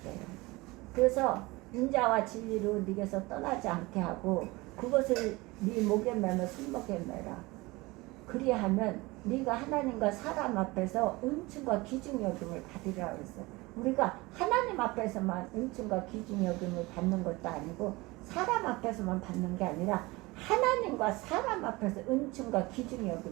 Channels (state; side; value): quieter; left; 22.4 dB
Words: 그래서 인자와 진리로 네게서 떠나지 않게 하고 그것을 네 목에 매며 손목에 매라. 그리하면 네가 하나님과 사람 앞에서 은총과 귀중 여김을 받으리라 그랬어요. 우리가 하나님 앞에서만 은총과 귀중 여김을 받는 것도 아니고 사람 앞에서만 받는 게 아니라 하나님과 사람 앞에서 은총과 귀중